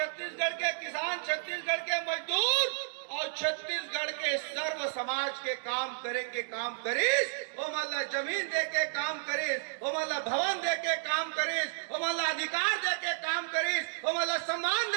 के किसान, छत्तीसगढ़ के मजदूर और छत्तीसगढ़ के सर्व समाज के काम करे के काम करीस, वो मतलब जमीन दे के काम करीस, वो मतलब भवन दे के काम करीस, वो मतलब अधिकार दे के काम करीस, वो मतलब सम्मान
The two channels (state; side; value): silent; left; digital silence